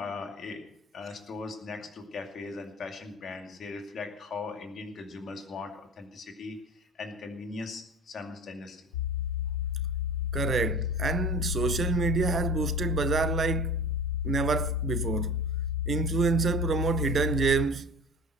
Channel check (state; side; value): normal; both; correlation 0.37